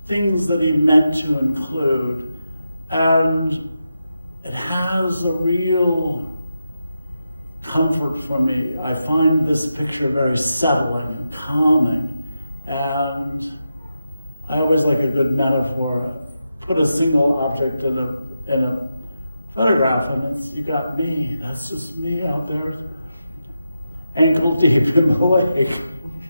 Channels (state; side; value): inverted; both; correlation -0.88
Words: things that he meant to include. And it has a real comfort for me. I find this picture very settling and calming. And I always like a good metaphor. Put a single object in a photograph and you got me. That's just me out there, ankle deep in the lake.